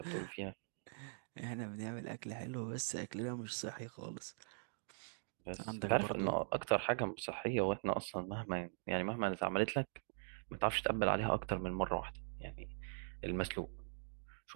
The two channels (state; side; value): silent; left; digital silence